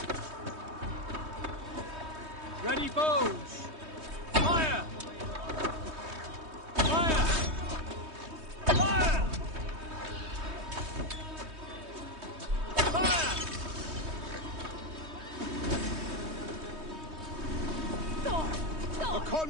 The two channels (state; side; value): late; left; 3.2 ms